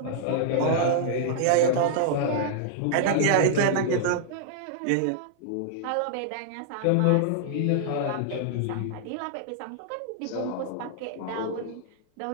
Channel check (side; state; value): both; different; correlation -0.01